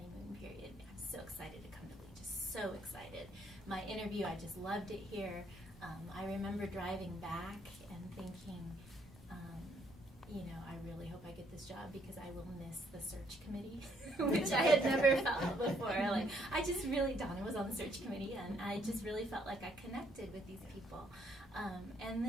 period. I'm so excited to come to Lee, just so excited. My interview, I just loved it here. I remember driving back and thinking, I really hope I get this job because I will miss the search committee, which I had never felt before. Like, Donna was on the search committee, and I just really felt like I connected with these people. And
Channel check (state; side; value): normal; both; correlation 0.69